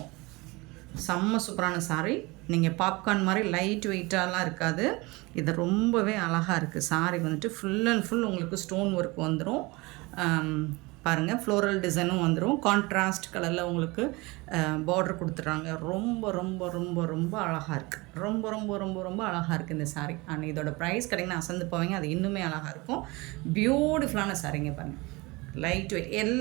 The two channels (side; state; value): left; quieter; 24.0 dB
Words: செம்ம சூப்பரான சாரீ. நீங்கள் பாப்கார்ன் மாதிரி லைட் வெயிட்டாலாம் இருக்காது. இது ரொம்பவே அழகாக இருக்குது. சாரீ வந்துட்டு ஃபுல் அண்ட் ஃபுல் உங்களுக்கு ஸ்டோன் ஒர்க் வந்துடும். பாருங்கள், ஃப்ளோரல் டிசைனும் வந்துடும். கான்ட்ராஸ்ட் கலரில் உங்களுக்கு பார்டர் கொடுத்துட்றாங்க. ரொம்ப ரொம்ப ரொம்ப ரொம்ப அழகாக இருக்குது. ரொம்ப ரொம்ப ரொம்ப ரொம்ப அழகாக இருக்குது இந்த சாரீ. அண்ட் இதோட ப்ரைஸ் கிடைக்குன்னு அசந்து போவீங்க. அது இன்னுமே அழகாக இருக்கும். பியூட்டிஃபுல்லான சாரீங்க பாருங்கள். லைட் வெயிட்,